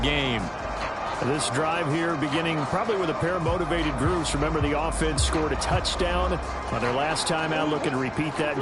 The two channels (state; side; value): identical; both; correlation 1.00